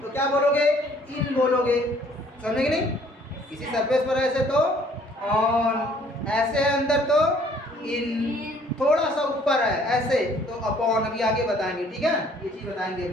तो क्या बोलोगे? इन बोलोगे। समझे कि नहीं? किसी सरफेस पर ऐसे तो ऑन, ऐसे अंदर तो इन, थोड़ा सा ऊपर है ऐसे तो अपॉन। अभी आगे बताएंगे, ठीक है, ये चीज बताएंगे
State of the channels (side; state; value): both; normal; correlation 0.59